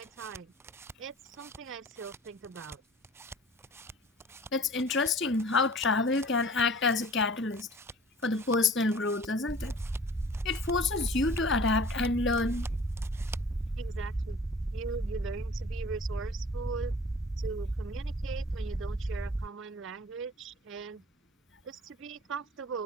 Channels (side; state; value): both; normal; correlation 0.47